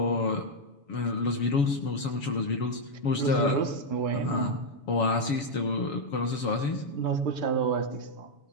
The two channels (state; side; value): late; right; 7.1 ms